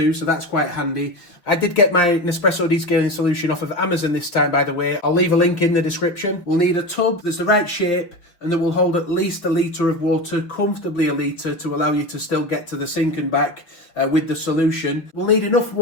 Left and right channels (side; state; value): right; late; 5.9 ms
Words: so that's quite handy. I did get my Nespresso descaling solution off of Amazon this time, by the way. I'll leave a link in the description. We'll need a tub that's the right shape and that will hold at least 1 litre of water, comfortably 1 litre, to allow you to still get to the sink and back with the solution. We'll need enough